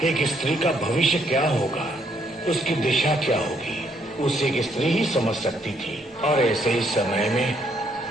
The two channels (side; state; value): both; normal; correlation 0.71